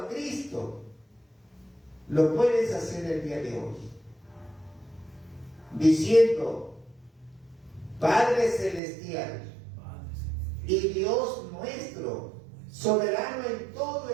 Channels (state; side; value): drops out; left; at 8.8 s